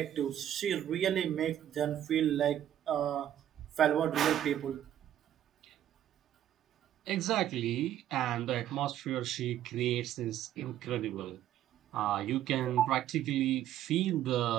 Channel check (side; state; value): left; quieter; 11.5 dB